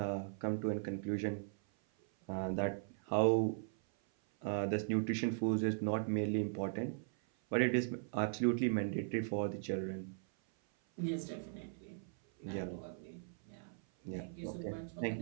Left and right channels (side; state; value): left; silent; 52 dB below the other